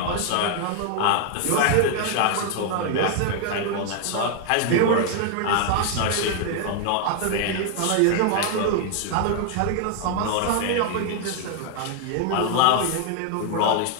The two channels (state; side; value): different; both; correlation 0.00